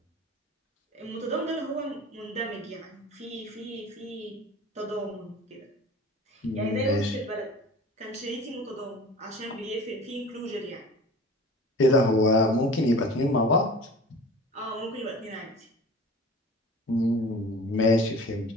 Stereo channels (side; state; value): both; normal; correlation 0.41